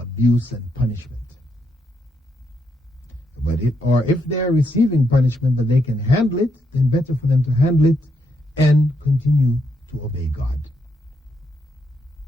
and punishment. But if they're receiving punishment but they can handle it, then better for them to handle it and continue to obey God.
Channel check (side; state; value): both; normal; correlation 0.78